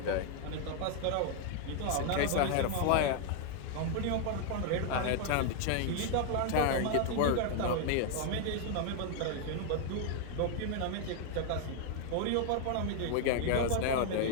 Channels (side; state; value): both; different; correlation 0.00